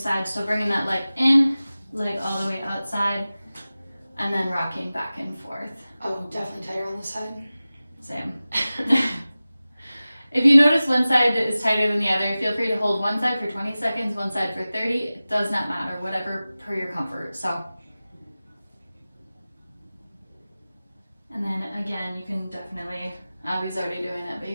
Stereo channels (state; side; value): inverted; both; correlation -0.97